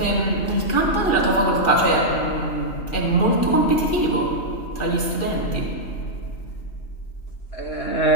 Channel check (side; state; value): right; late; 2.4 ms